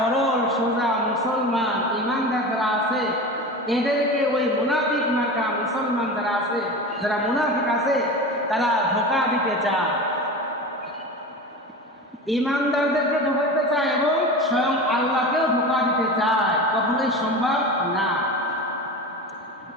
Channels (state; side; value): normal; both; correlation 0.29